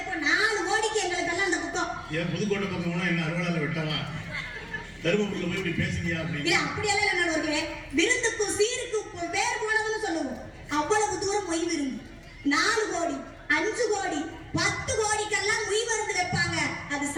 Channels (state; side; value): identical; both; correlation 1.00